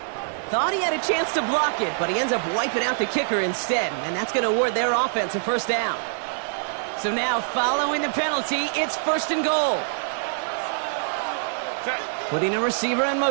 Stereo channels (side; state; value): left; silent; digital silence